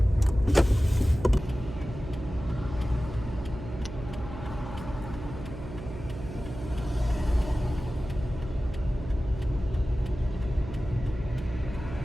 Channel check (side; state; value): right; noise; hum, 10 dB below the sound